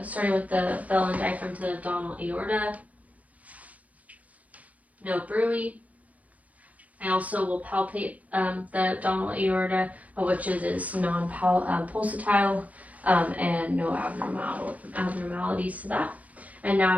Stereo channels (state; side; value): late; left; 0.071 ms